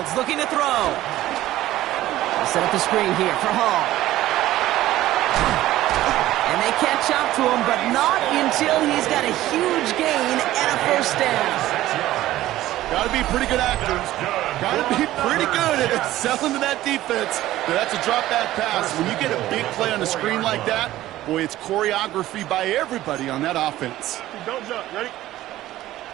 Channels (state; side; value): quieter; left; 15.0 dB